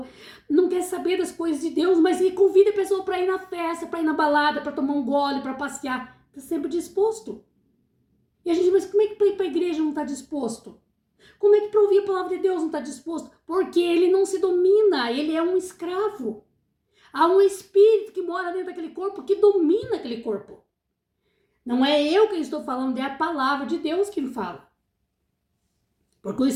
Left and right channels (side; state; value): both; identical; correlation 1.00